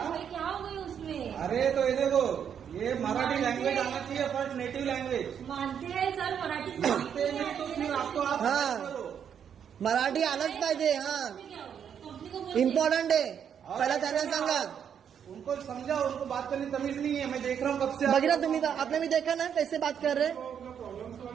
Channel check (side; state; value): left; quieter; 8.2 dB